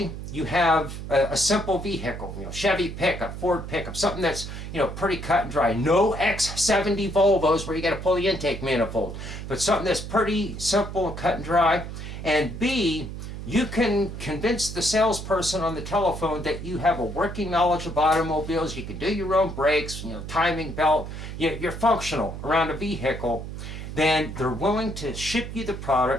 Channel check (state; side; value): noise; right; hum, 8 dB below the sound